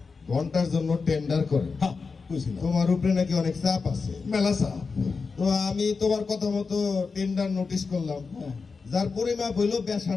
ঘন্টার জন্য টেন্ডার করে। হ্যাঁ কইছিলাম। তোমার উপরে নাকি অনেক চাপ আছে। মেলা চাপ। তো আমি তোমার কথা মতো টেন্ডার নোটিশ করলাম, হ্যাঁ। যার পরিমাপ হইলো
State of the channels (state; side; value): quieter; right; 4.7 dB